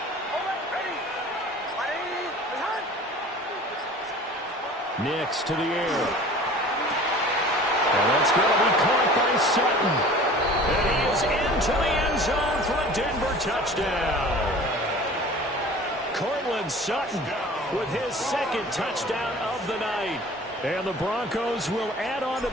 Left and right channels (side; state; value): both; normal; correlation 0.44